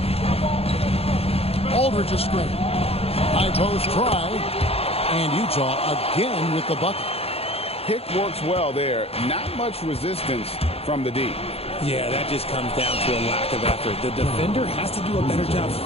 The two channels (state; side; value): late; right; 0.29 ms